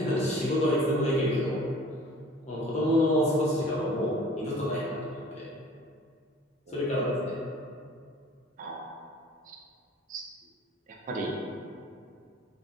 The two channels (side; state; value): both; normal; correlation 0.48